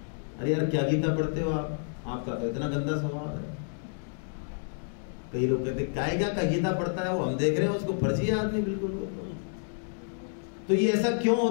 अरे यार क्या गीता पढ़ते हो आप, आपका तो इतना गंदा स्वभाव है। कई लोग कहते कायगा का गीता पढ़ता है वो, हम देख रहे हैं उसको फर्जी है आदमी बिल्कुल। तो ये ऐसा क्यों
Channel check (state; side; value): silent; right; digital silence